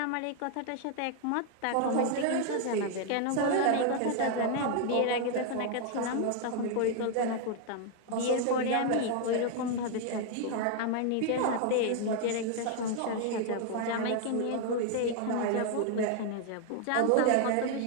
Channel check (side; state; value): both; different; correlation 0.00